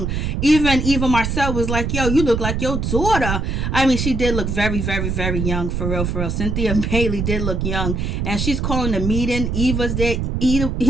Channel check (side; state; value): right; noise; rumble, 1 dB below the sound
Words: Even Marcel was like, yo, you look like your daughter. I mean, she did look very, very, very young, for real, for real. Cynthia Bailey did look young. And she's calling the meeting. Eva's there